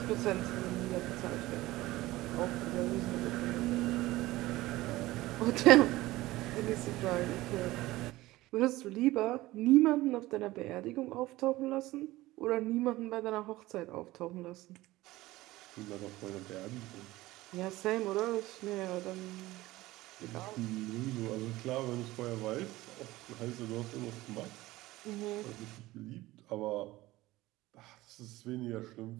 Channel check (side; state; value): left; quieter; 18.1 dB